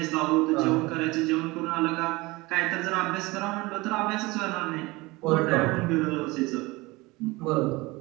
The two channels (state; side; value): quieter; left; 22.4 dB